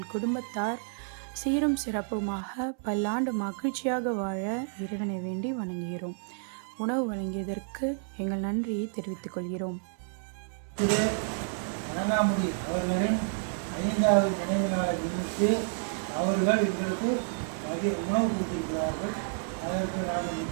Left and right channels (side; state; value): left; silent; 58 dB below the other